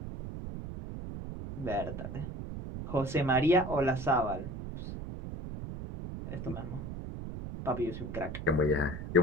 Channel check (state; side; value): noise; right; rumble, 8 dB below the sound